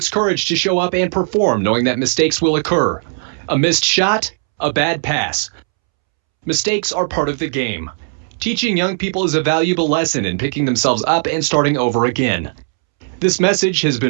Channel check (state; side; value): silent; left; 68 dB below the other